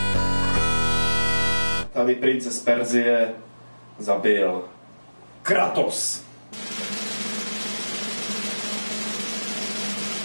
Tady prince z Perzie zabil Kratos.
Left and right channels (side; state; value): both; inverted; correlation -1.00